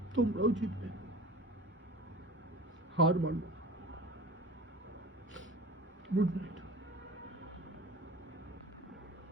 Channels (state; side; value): normal; both; correlation 0.38